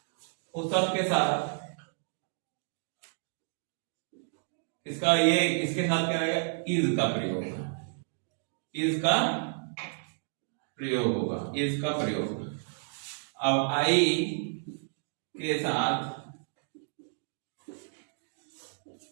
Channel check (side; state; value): left; silent; 57 dB below the other